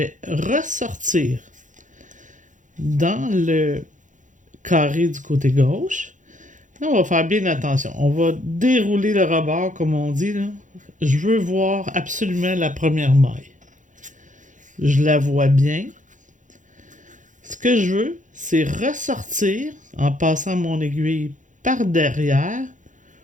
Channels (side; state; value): left; late; 0.37 ms